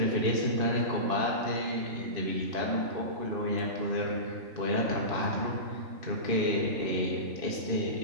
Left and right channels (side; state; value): left; late; 2.6 ms